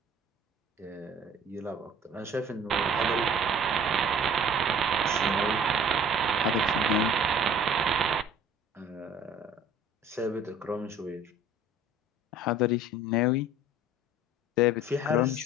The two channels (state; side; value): normal; both; correlation 0.49